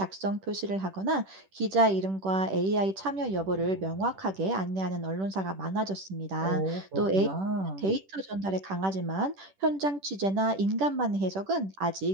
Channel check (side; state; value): left; late; 10 ms